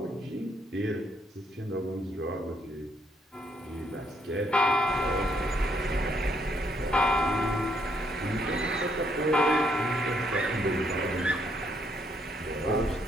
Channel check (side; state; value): both; normal; correlation 0.72